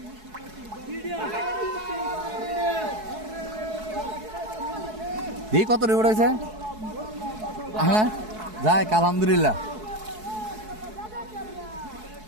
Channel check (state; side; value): late; left; 4.7 ms